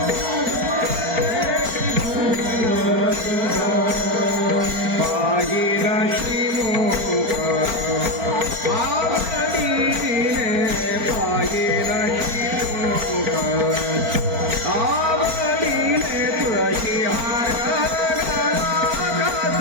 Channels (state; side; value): late; left; 4.4 ms